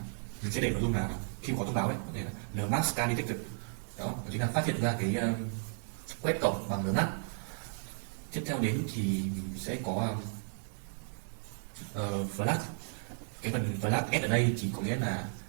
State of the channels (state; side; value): silent; left; 55 dB below the other